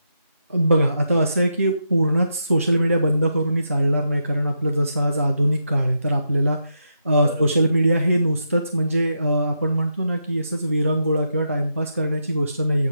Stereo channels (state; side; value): inverted; both; correlation -0.83